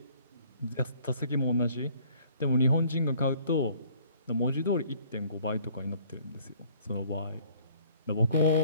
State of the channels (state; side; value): inverted; both; correlation -0.57